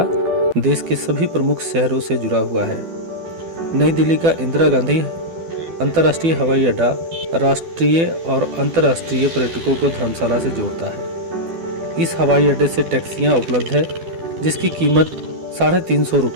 देश के सभी प्रमुख शहरों से जुड़ा हुआ है। नई दिल्ली का इंदिरा गांधी अंतर्राष्ट्रीय हवाई अड्डा राष्ट्रीय और अंतर्राष्ट्रीय पर्यटकों को धर्मशाला से जोड़ता है। इस हवाई अड्डे से टैक्सियां उपलब्ध है, जिसकी कीमत 350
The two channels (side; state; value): left; late; 12 ms